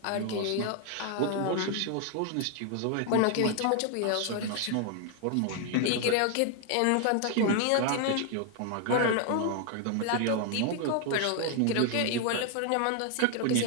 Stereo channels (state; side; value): different; both; correlation 0.00